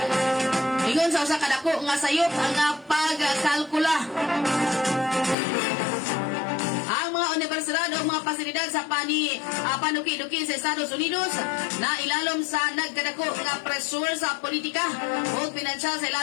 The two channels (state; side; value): drops out; right; at 5.4 s